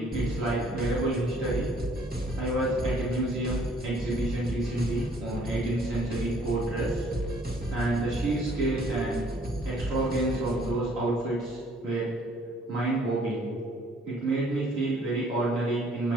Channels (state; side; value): normal; both; correlation 0.60